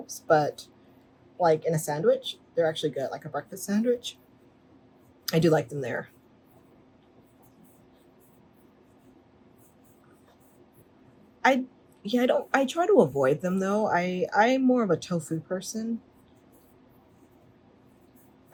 but in a sandwich. They're actually good, like a breakfast sandwich. I do like them there. I try to avoid them though. I'm more of a tofu person.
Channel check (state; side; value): identical; both; correlation 1.00